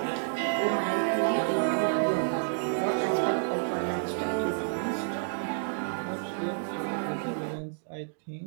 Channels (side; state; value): left; silent; digital silence